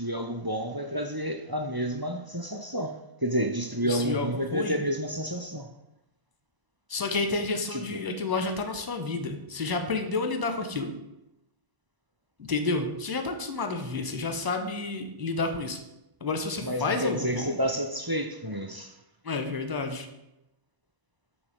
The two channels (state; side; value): late; left; 1.0 ms